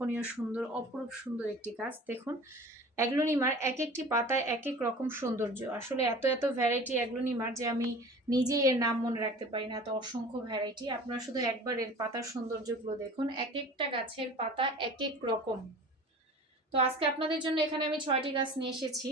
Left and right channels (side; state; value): both; normal; correlation 0.41